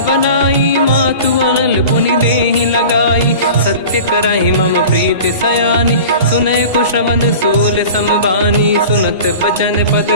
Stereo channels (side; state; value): both; inverted; correlation -0.38